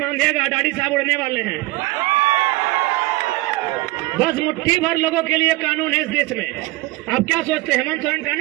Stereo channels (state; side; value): quieter; left; 20.0 dB